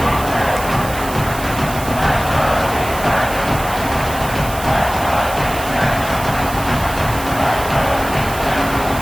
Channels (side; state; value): right; noise; hiss, 12 dB below the sound